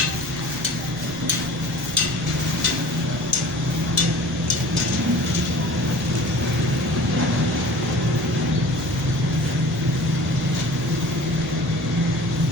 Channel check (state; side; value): noise; right; rumble, 17 dB below the sound